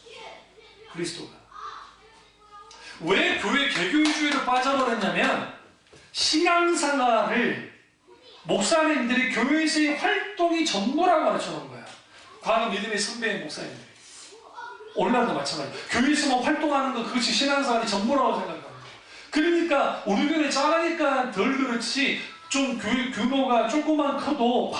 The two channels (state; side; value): identical; both; correlation 1.00